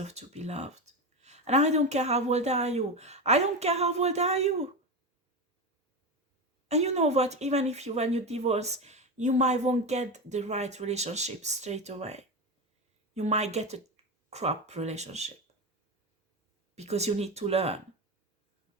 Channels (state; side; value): normal; both; correlation 0.18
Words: to be loved. And I don't care how old are you. I don't care how old are you. And you know what? Even if when you divorce, you might won't get the right relationship straight away. You might get a crap relationship because you need to learn.